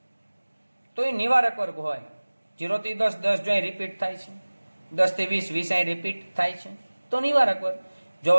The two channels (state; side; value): inverted; both; correlation -1.00